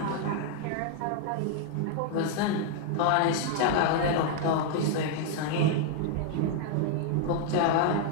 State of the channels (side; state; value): both; different; correlation 0.00